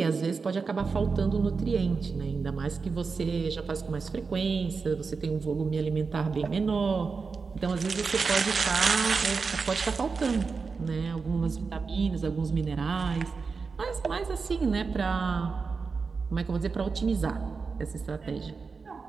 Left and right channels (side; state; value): left; quieter; 4.8 dB